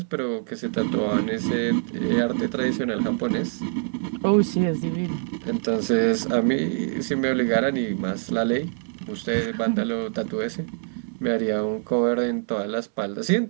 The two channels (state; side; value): silent; left; 62 dB below the other